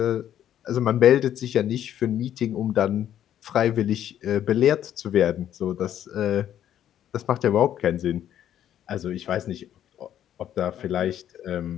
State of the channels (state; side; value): quieter; right; 10.8 dB